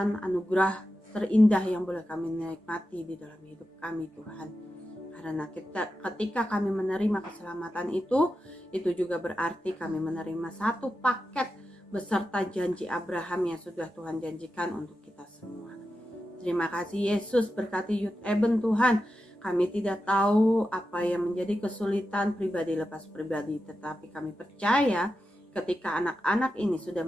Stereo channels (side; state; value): both; normal; correlation 0.90